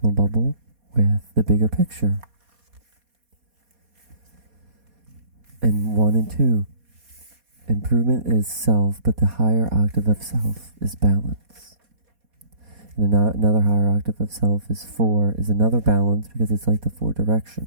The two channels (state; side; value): late; left; 4.2 ms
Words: bubble with the bigger picture. And 1 and 2, improvement is self, but the higher octave of self is balance. And another higher octave of self is 4, is another balance, because it's like the 4